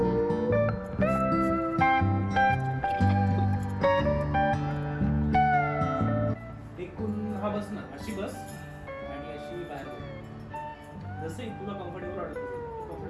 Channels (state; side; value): identical; both; correlation 1.00